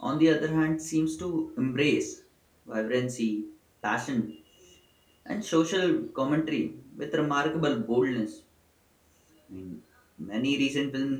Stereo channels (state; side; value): identical; both; correlation 1.00